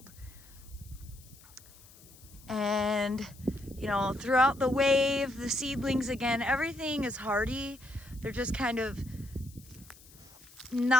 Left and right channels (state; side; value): noise; left; hiss, 23 dB below the sound